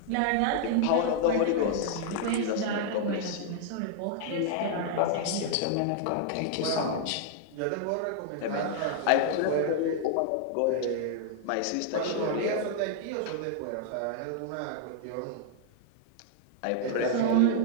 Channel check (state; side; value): different; both; correlation 0.00